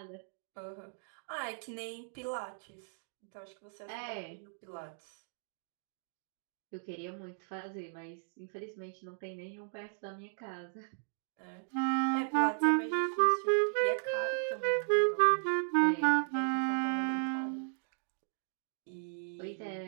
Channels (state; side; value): silent; left; digital silence